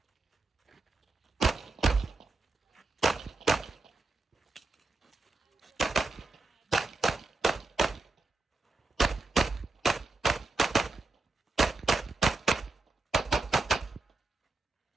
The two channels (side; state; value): left; quieter; 3.4 dB